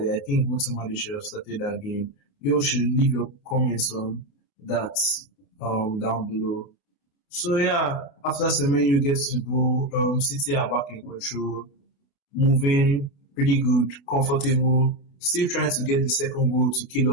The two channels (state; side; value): late; right; 28 ms